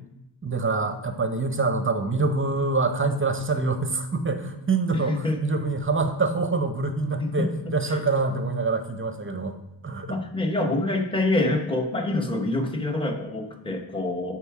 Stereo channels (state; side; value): normal; both; correlation 0.24